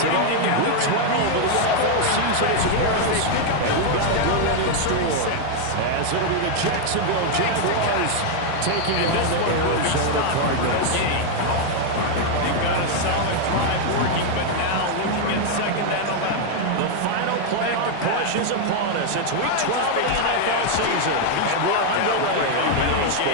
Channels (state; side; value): different; both; correlation 0.00